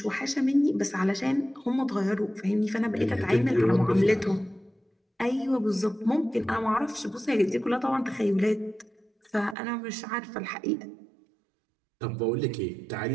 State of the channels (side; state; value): left; drops out; at 9.6 s